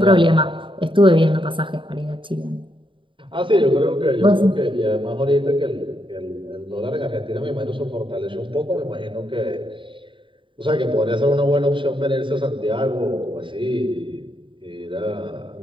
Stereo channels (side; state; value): left; late; 0.24 ms